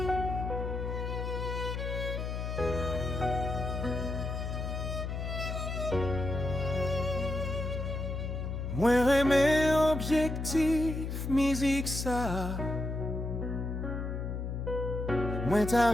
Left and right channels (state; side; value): noise; left; hum, 3 dB below the sound